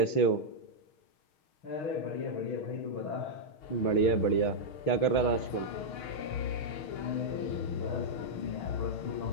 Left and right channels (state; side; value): late; right; 6.4 ms